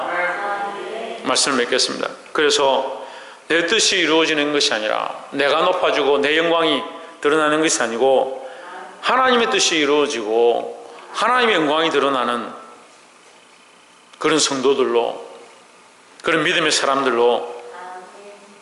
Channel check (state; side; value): identical; both; correlation 1.00